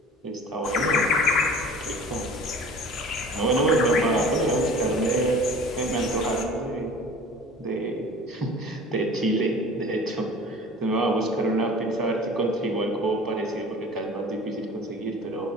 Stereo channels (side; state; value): both; normal; correlation 0.43